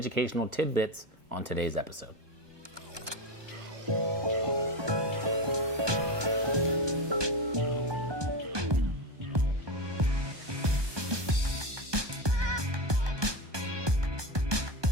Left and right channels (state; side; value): late; left; 1.2 ms